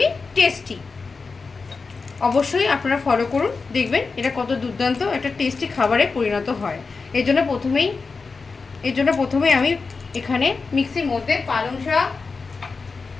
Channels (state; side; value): quieter; right; 4.5 dB